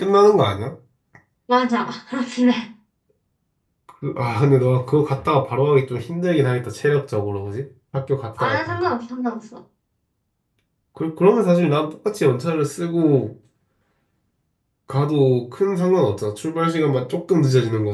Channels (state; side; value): identical; both; correlation 1.00